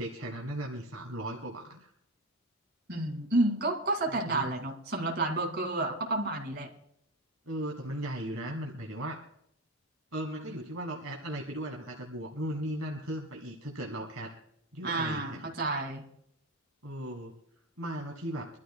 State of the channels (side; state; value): both; normal; correlation 0.21